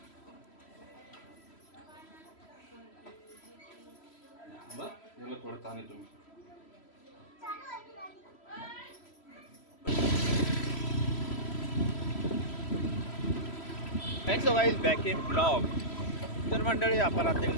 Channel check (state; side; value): late; right; 3.1 ms